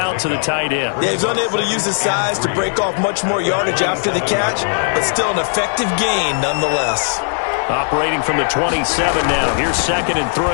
to the tight end. Yeah, he's unable to use his size to break off much more yardage after the catch, but still an effective gain nonetheless. Operating from the 27 now. Here's 2nd and 3.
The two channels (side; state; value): right; silent; 68 dB below the other